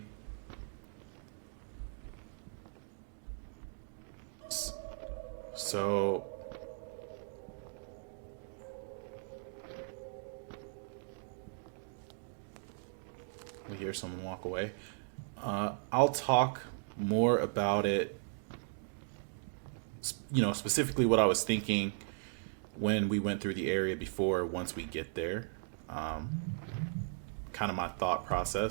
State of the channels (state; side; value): silent; left; digital silence